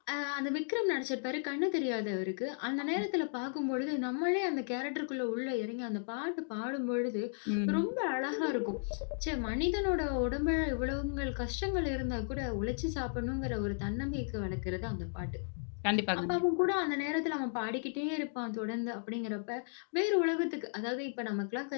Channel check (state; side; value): silent; right; digital silence